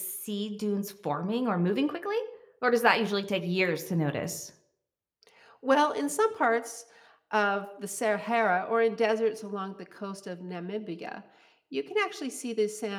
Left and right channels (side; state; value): both; identical; correlation 1.00